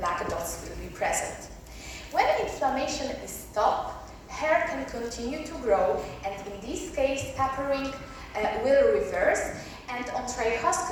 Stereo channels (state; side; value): identical; both; correlation 1.00